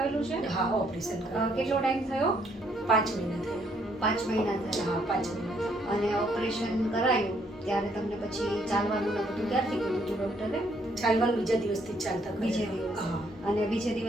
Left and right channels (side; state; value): both; normal; correlation 0.69